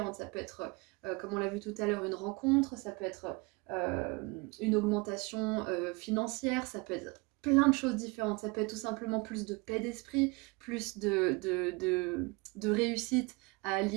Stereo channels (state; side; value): quieter; left; 27.1 dB